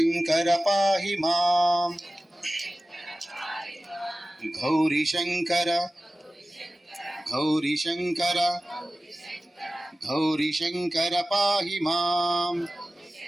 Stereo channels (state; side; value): normal; both; correlation 0.96